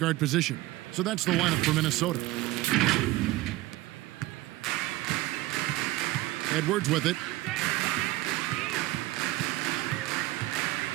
guard position. So that's the lineup for Minnesota. Edwards with it.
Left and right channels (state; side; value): quieter; left; 17.8 dB